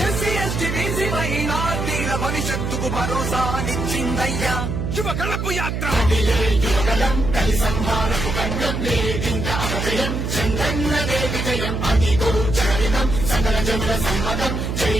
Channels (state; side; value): noise; right; hum, 2 dB below the sound